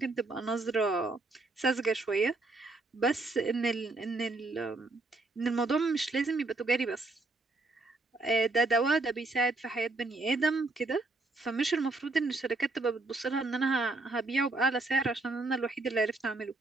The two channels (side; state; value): left; quieter; 3.2 dB